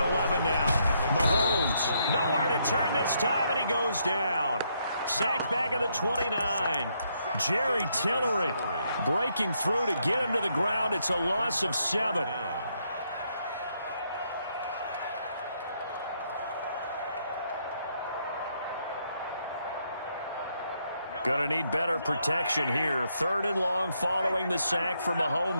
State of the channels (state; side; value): inverted; both; correlation -0.75